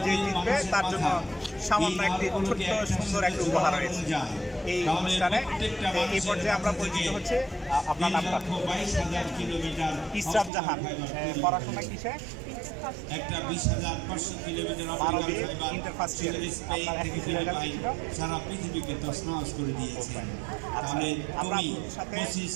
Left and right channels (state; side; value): drops out; left; at 10.5 s